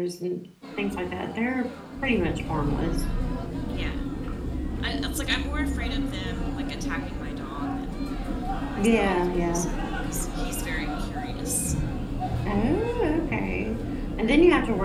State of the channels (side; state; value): both; identical; correlation 1.00